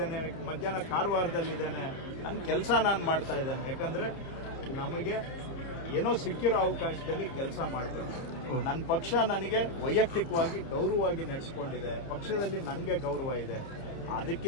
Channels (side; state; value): right; late; 29 ms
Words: ಮಧ್ಯಾಹ್ನ ಕಾರವಾರದಲ್ಲಿದ್ದೇನೆ. ನನ್ನ ಕೆಲಸ ನಾನು ಮಾಡ್ತಾ ಇದ್ದೇನೆ. ಯಾಕಂದ್ರೆ ನಮಗೆ ಏನೋ ಸಿಕ್ಕಿರೋ ಅವಕಾಶದಲ್ಲಿ ಕೆಲಸ ಮಾಡಬೇಕು. ನನ್ನ ಪಕ್ಷ ನನಗೆ ವೈಯಕ್ತಿಕವಾಗಿ ಗೌರವವಾಗಿ ನಡೆಸಿಕೊಂಡಿದೆ. ಪಕ್ಷದಲ್ಲಿ ನನಗೆ ಗೌರವ ಇದೆ.